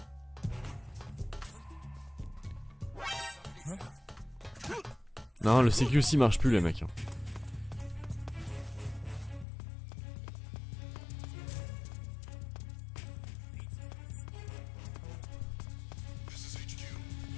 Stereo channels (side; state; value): right; drops out; at 9.5 s